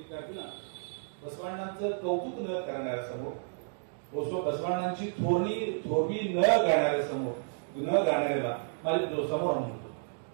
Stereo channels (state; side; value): silent; left; digital silence